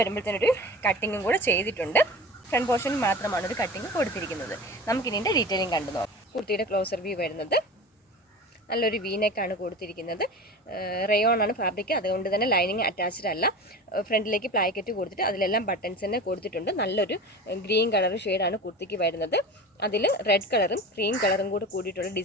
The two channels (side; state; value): both; normal; correlation 0.33